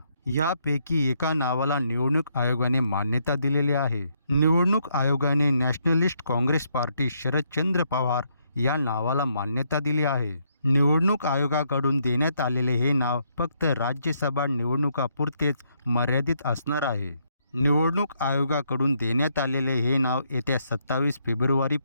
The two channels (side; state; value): both; inverted; correlation -0.74